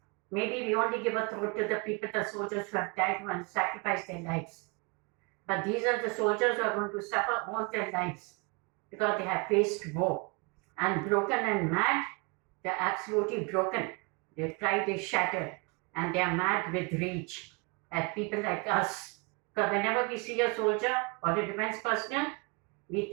Maybe we only give a thought to the people, the soldiers who have died and sacrificed their lives. But these are the soldiers who are going to suffer all their lives because they have faced war. And broken and mad, they're absolutely broken. Their pride is shattered and they are mad with rage at people like us. Because whenever we see a soldier or a defense personnel, we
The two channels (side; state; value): left; quieter; 31.2 dB